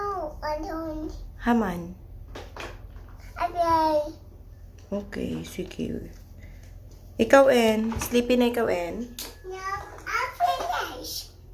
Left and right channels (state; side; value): identical; both; correlation 1.00